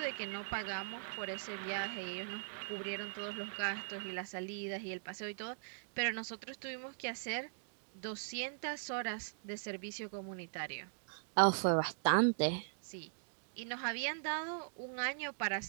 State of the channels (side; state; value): left; silent; digital silence